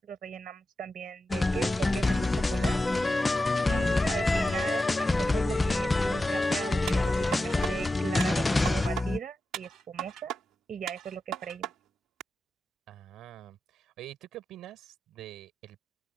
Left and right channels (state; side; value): normal; both; correlation 0.92